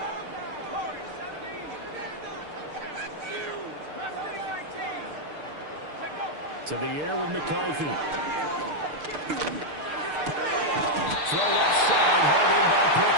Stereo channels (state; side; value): late; left; 6.6 ms